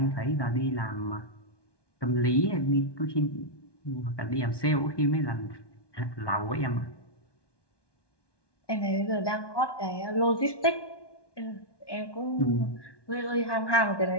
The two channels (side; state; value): right; late; 1.2 ms